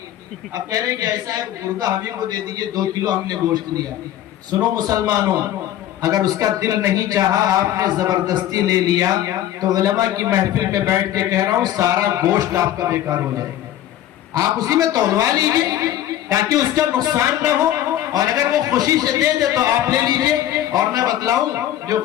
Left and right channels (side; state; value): right; quieter; 12.4 dB